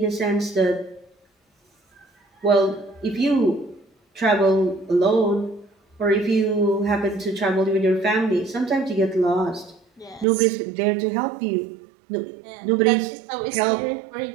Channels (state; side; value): drops out; left; at 10.2 s